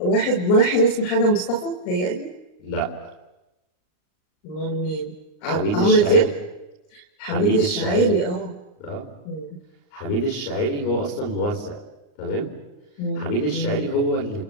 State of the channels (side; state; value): right; late; 39 ms